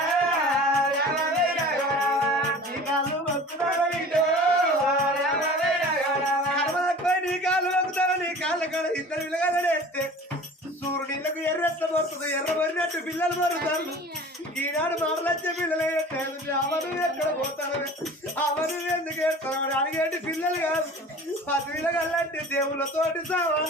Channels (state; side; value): normal; both; correlation 0.42